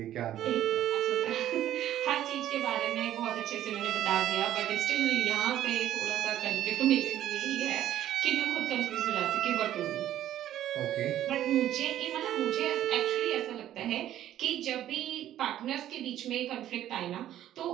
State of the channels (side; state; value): left; quieter; 12.2 dB